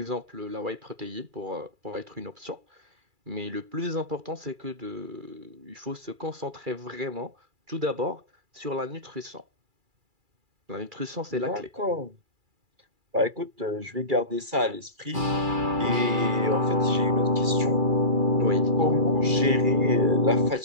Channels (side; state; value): left; late; 2.3 ms